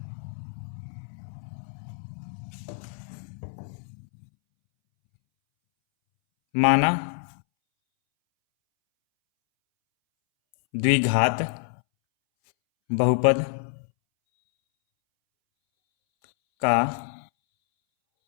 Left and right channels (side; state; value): right; silent; 61 dB below the other